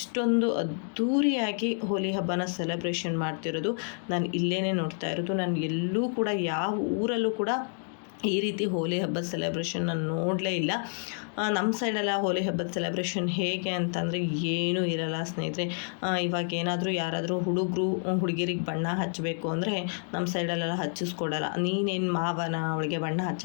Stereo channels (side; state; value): right; silent; 56 dB below the other